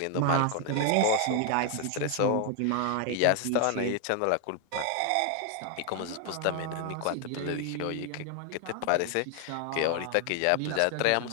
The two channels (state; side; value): different; both; correlation 0.00